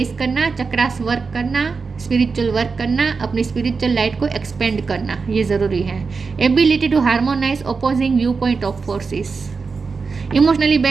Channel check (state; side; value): quieter; left; 4.8 dB